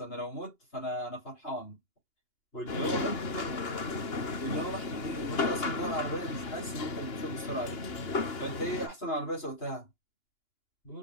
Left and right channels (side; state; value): right; late; 2.9 ms